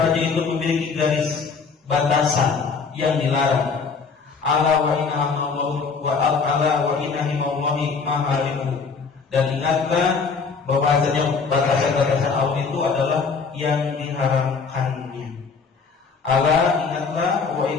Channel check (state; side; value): quieter; right; 5.1 dB